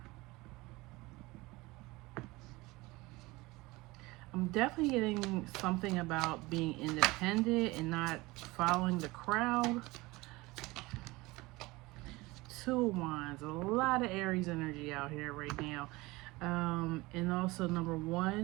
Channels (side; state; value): left; quieter; 21.7 dB